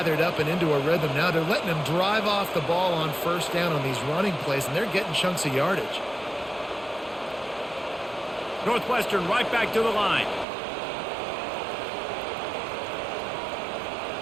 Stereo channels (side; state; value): left; drops out; at 10.5 s